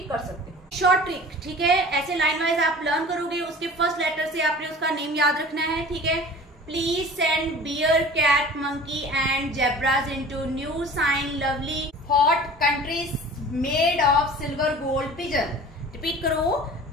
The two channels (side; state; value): both; normal; correlation 0.42